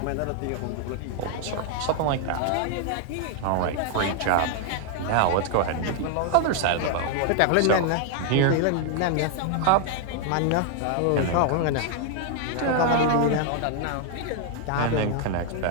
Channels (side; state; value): both; different; correlation 0.00